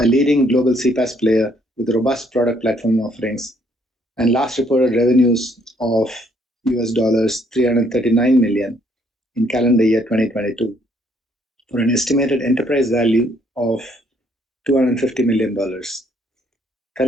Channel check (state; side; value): normal; both; correlation 0.67